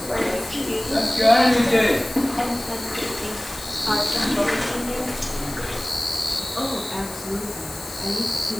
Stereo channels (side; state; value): left; noise; hiss, 14 dB below the sound